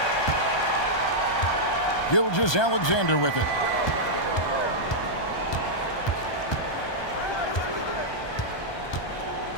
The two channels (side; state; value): right; late; 1.2 ms